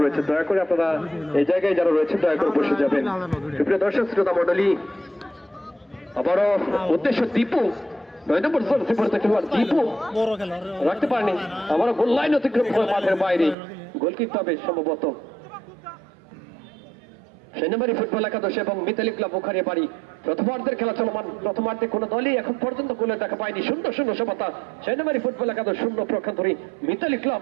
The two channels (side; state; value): left; drops out; at 13.6 s